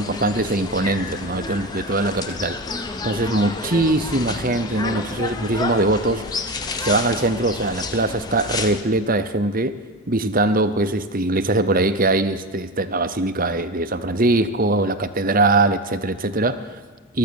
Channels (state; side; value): normal; both; correlation 0.22